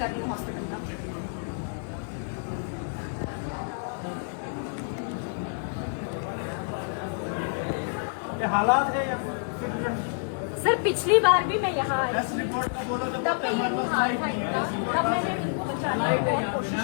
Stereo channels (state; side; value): silent; right; digital silence